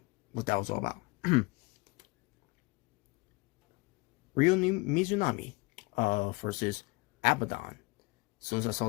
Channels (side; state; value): right; quieter; 26.0 dB